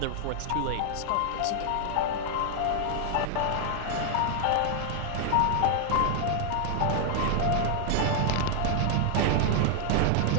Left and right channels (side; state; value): both; different; correlation 0.00